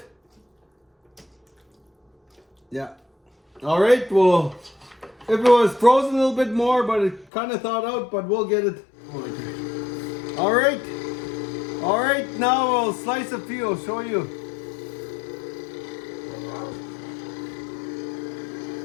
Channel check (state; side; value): drops out; right; at 7.2 s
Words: Yeah. All right, well, if it was frozen a little bit more, but it kind of thawed out, but we'll get it. All right. All right, now I'll slice a few, I'll show you.